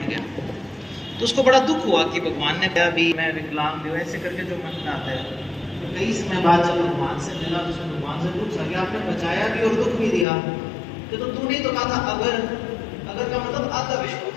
गया। तो उसको बड़ा दुख हुआ कि भगवान ने कहा भी मैं विकलांग हूँ, ऐसे करके जो मन में आता है। तो कई समय बाद जब भगवान से मिला तो उसने भगवान से पूछा कि आपने बचाया भी और दुख भी दिया, कि तो तूने तो कहा था अगर का मतलब आधा विश्वास।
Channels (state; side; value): drops out; right; at 10.2 s